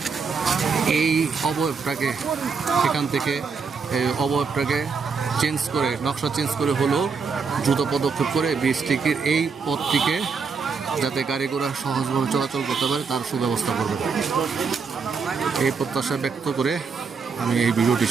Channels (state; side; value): quieter; left; 5.3 dB